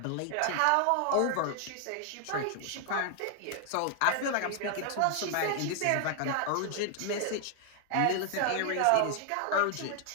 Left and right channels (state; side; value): different; both; correlation 0.00